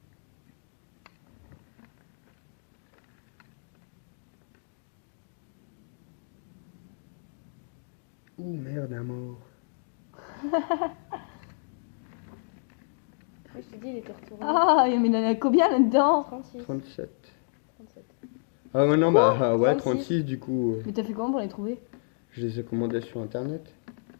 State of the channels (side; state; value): right; silent; digital silence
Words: Ouh merde, un mort. Oui, je te dis, il était retourné. Ah, mais il y en a combien là-dedans? 36. 37. 37. Ah ouais, non, bah ouais, 36. 36 du coup. Mais t'as fait comment pour les trouver? Je les ai commandés sur internet.